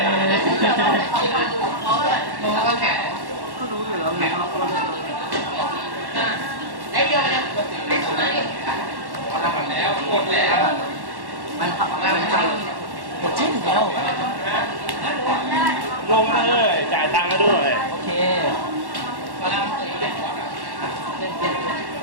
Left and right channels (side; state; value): left; late; 1.1 ms